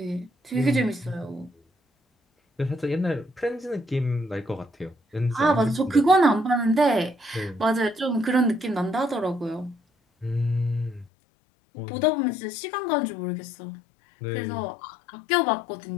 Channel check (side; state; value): right; drops out; at 11.1 s